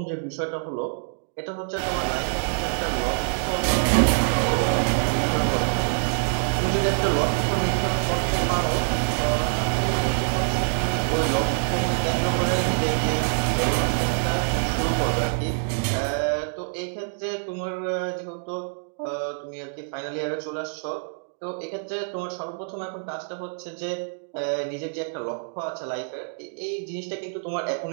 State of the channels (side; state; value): left; silent; digital silence